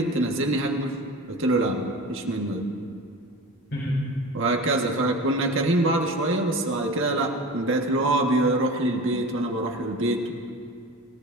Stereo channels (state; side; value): normal; both; correlation 0.34